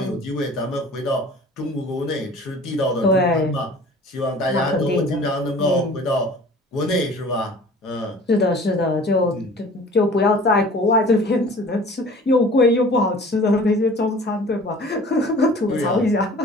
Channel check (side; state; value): both; normal; correlation 0.46